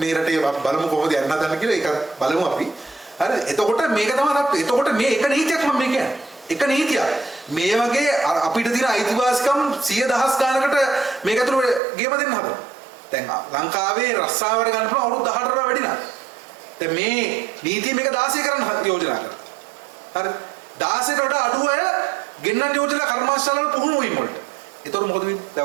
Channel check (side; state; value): left; drops out; at 11.8 s